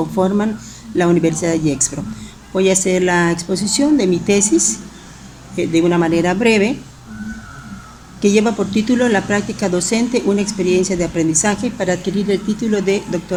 la Universidad de Gexpro. Voy a hacer la exposición de mi tesis de una manera breve, que lleva por título La práctica docente, una experiencia de aprendizaje para adquirir el título de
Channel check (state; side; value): identical; both; correlation 1.00